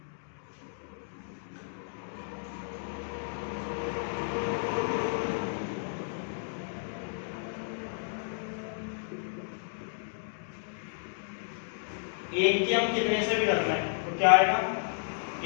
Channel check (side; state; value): right; silent; digital silence